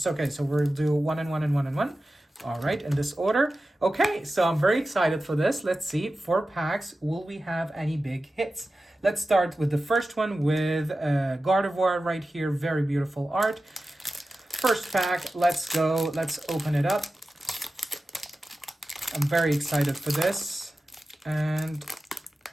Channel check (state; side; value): normal; both; correlation 0.94